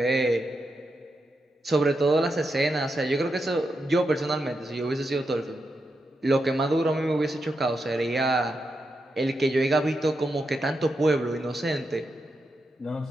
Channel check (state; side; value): normal; both; correlation 0.86